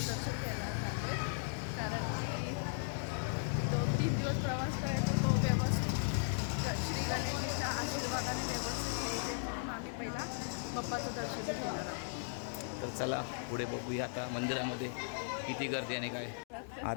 दर्शन घ्यायला चाललोय कारण की 2-3 दिवस प्रवास करायचा तो व्यवस्थित श्री गणेशाच्या आशीर्वादाने व्यवस्थित होते म्हणून आम्ही पहिला बाप्पाचं दर्शन घेणार आहोत तर चला पुढे बघूया आता मंदिरामध्ये किती गर्दी आणि काय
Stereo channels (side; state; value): right; silent; digital silence